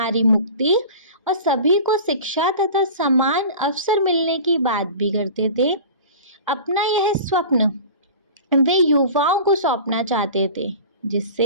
मुक्ति और सभी को शिक्षा तथा समान अवसर मिलने की बात भी करते थे। अपना यह स्वप्न वे युवाओं को सौंपना चाहते थे,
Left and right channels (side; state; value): both; inverted; correlation -0.38